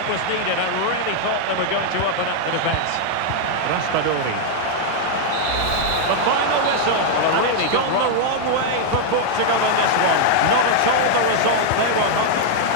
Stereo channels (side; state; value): both; different; correlation 0.00